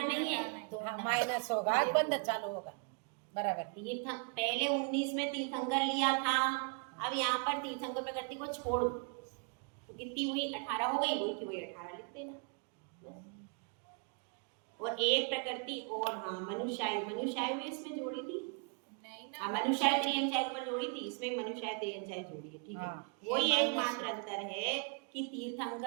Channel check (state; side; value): quieter; left; 38.2 dB